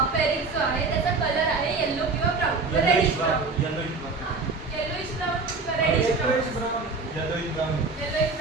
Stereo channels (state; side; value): quieter; left; 4.1 dB